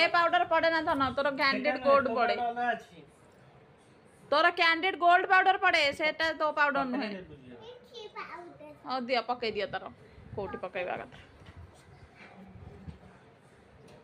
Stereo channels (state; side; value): identical; both; correlation 1.00